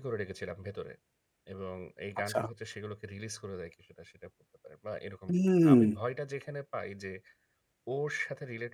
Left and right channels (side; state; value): both; identical; correlation 1.00